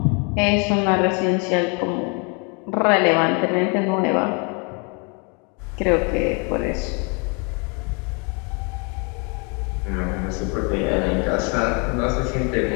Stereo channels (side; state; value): right; quieter; 33.5 dB